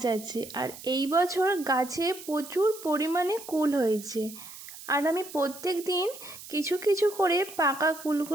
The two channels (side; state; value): right; noise; hiss, 15 dB below the sound